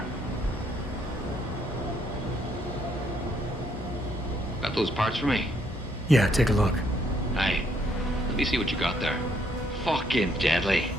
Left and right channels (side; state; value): both; normal; correlation 0.70